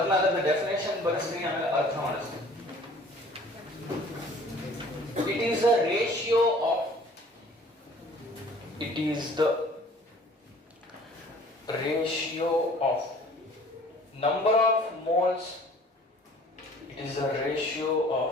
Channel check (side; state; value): both; normal; correlation 0.51